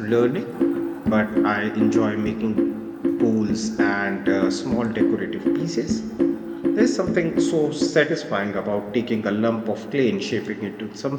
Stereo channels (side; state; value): both; identical; correlation 1.00